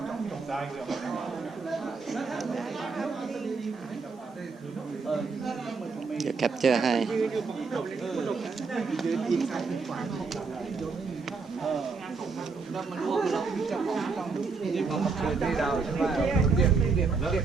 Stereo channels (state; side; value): quieter; left; 4.6 dB